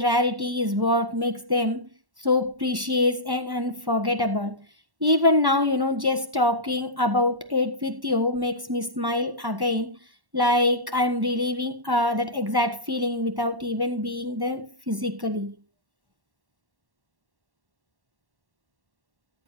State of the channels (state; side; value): late; left; 1.1 ms